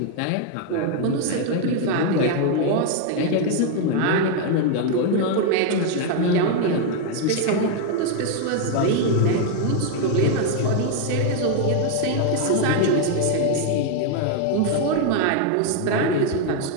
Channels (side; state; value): both; different; correlation 0.00